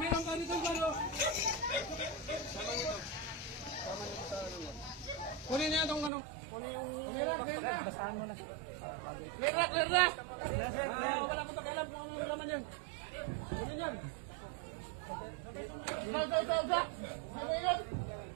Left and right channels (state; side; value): drops out; left; at 6.1 s